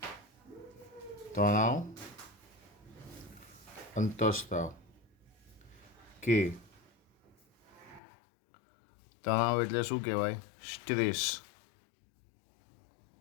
કે તણાવ એટલે શું કહેવાય? Stress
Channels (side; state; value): right; drops out; at 8.0 s